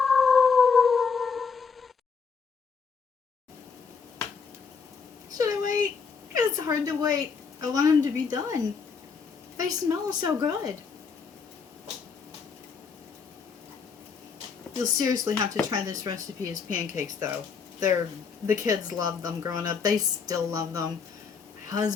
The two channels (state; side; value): quieter; right; 5.6 dB